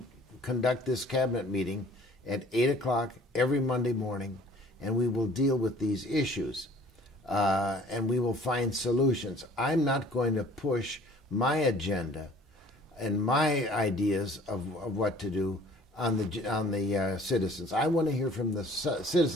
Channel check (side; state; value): both; normal; correlation 0.52